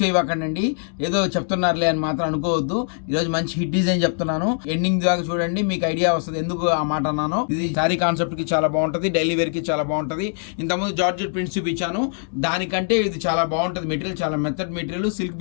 చేయవకండి, ఏదో చెప్తున్నారులే అని మాత్రం అనుకోవద్దు. ఈరోజు మంచి హిట్ డిజైన్ చెప్తున్నాను, ఎండింగ్ దాకా చూడండి, మీకు ఐడియా వస్తుంది ఎందుకు ఆ మాట అన్నాను. ఇది శారీ కాన్సెప్ట్ కి చాలా బాగుంటది, డైలీ వేర్ కి చాలా బాగుంటది. ఇంతకుముందు జార్జెట్ ప్రింట్స్ చూపించాను, దానికంటే ఇది చాలా బాగుంటది. మెటీరియల్ చాలా మెత్తడ్ మెటీరియల్, సిల్క్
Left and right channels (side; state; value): right; silent; 64 dB below the other